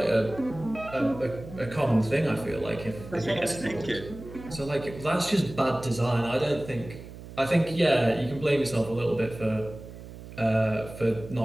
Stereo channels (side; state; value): right; noise; hum, 14 dB below the sound